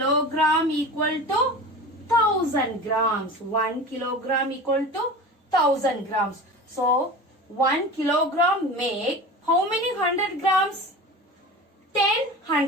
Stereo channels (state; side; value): normal; both; correlation 0.33